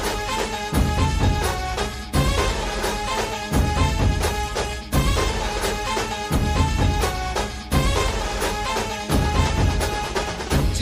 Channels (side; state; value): both; identical; correlation 1.00